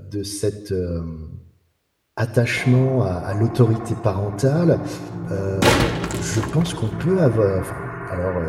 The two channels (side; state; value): both; identical; correlation 1.00